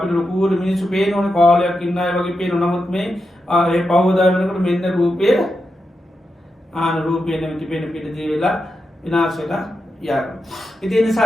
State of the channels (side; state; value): both; normal; correlation 0.87